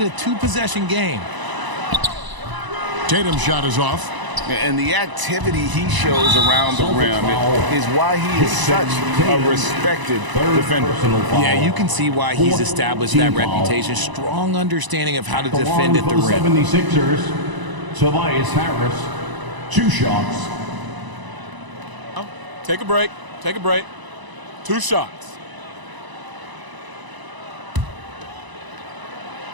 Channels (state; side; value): late; left; 1.0 ms